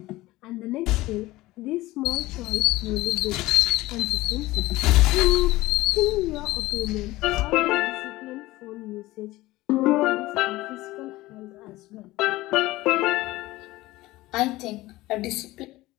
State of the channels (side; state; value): right; quieter; 18.4 dB